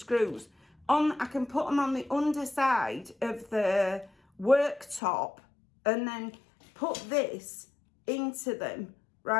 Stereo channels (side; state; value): right; drops out; at 5.0 s